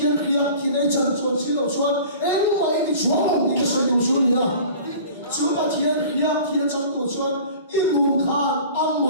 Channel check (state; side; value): inverted; both; correlation -0.43